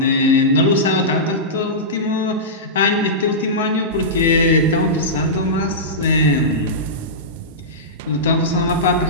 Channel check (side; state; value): both; normal; correlation -0.15